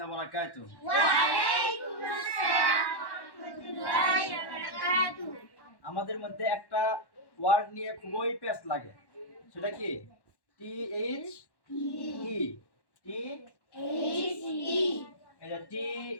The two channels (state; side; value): late; right; 1.1 ms